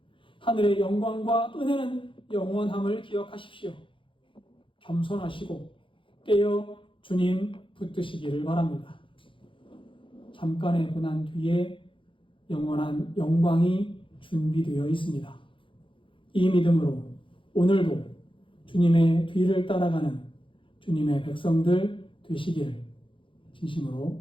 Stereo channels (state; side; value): late; right; 0.25 ms